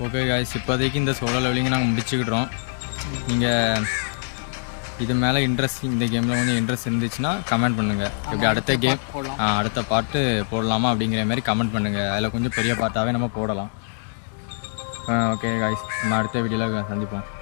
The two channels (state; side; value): silent; right; digital silence